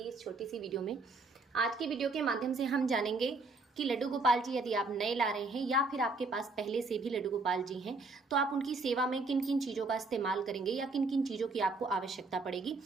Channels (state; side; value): quieter; left; 3.5 dB